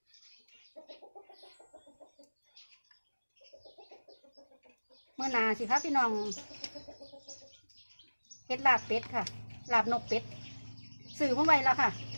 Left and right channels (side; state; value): both; inverted; correlation -1.00